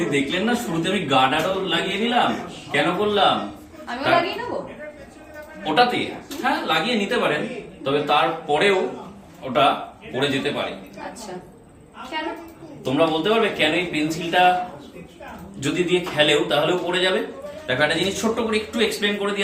দেখলেন না শুরুতে আমি গার্ডারও লাগিয়ে নিলাম। কেন করলাম? আমিও লাগিয়ে নেবো। ওটাতে হ্যাঁ লাগিয়ে নিতে পারেন, তবে তারপরেও ওটা পড়ে যেতে পারে। আচ্ছা, কেন? তোমরা বলতে পারবে কেন এই পেন্সিলটা যদি দিয়ে খেলেও তাহলেও পড়ে যাবে? দেখো একটা জিনিস ছোট্ট করে একটু এক্সপ্লেন করে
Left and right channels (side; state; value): both; identical; correlation 1.00